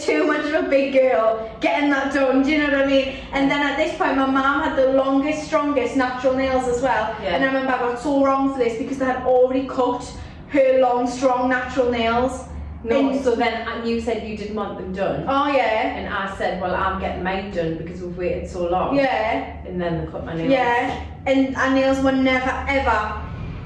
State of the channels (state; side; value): identical; both; correlation 1.00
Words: much of a big girl getting that done. Do you know what I mean? And then at this point, my mum had the longest, strongest natural nails as well. Yeah. And I remember I got so wrong for this because they had already cut her long, strong natural nails. No, And- so then you said you didn't want them done. Oh yeah. And I said, well, I'm getting mine done because we've waited so long. Yeah. And then they cut my nails. Yeah. And our nails were never ever